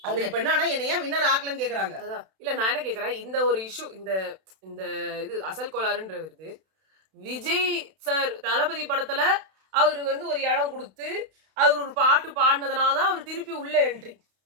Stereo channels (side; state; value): left; late; 32 ms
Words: அவங்க அது இப்ப என்னன்னா, என்ன ஏன் வின்னர் ஆக்கலன்னு கேட்கறாங்க. அதான். இல்ல நான் என்ன கேட்கிறேன், இந்த ஒரு இஷ்யூ இந்த இந்த இது அசல் கோளாறுன்ற வருது. விஜய் சார் தளபதி படத்துல அவருக்கு வந்து ஒரு இடம் குடுத்து, அவரு ஒரு பாட்டு பாடுனதுனால தான் அவரு திருப்பி உள்ள என்ட்ரி.